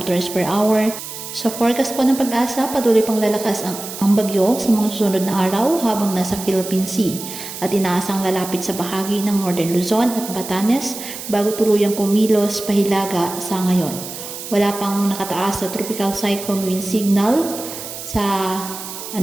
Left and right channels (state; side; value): noise; right; hiss, 10 dB below the sound